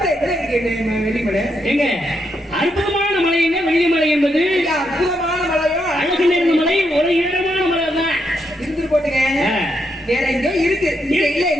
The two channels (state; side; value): normal; both; correlation 0.80